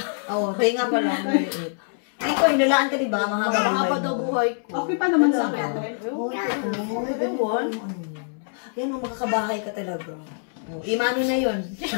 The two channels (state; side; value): silent; right; 62 dB below the other